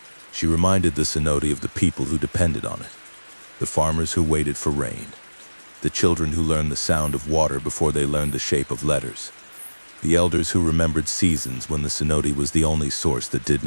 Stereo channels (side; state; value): both; inverted; correlation -1.00